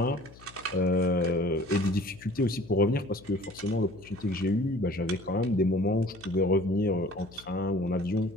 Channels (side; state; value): left; noise; hum, 22 dB below the sound